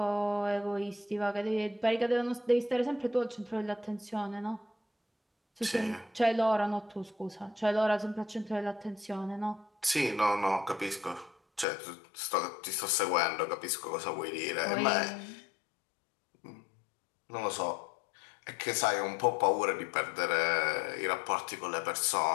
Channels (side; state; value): right; drops out; at 11.7 s